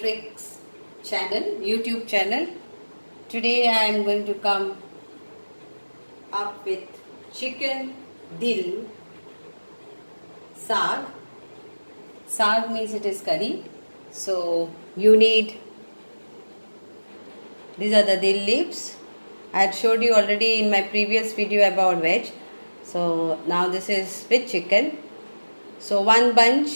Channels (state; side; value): inverted; both; correlation -1.00